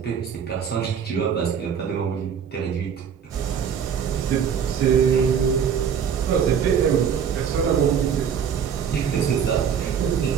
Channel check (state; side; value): quieter; left; 7.6 dB